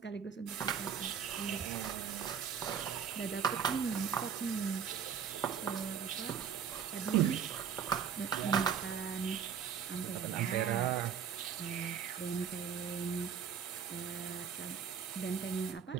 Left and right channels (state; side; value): quieter; left; 7.5 dB